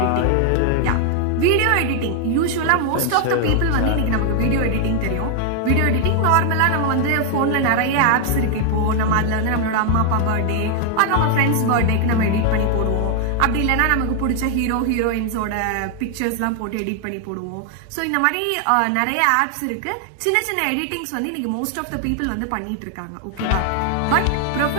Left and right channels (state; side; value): different; both; correlation 0.00